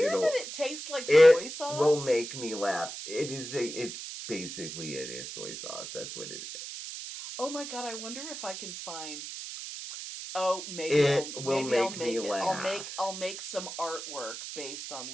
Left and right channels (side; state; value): right; noise; hiss, 9 dB below the sound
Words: that it tastes like soy sauce. It will make me laugh. It's basically soy sauce. That's what it is. Oh my God, I wonder if I can find... Oh, maybe I'll make it. Laugh. I'll make some artwork based on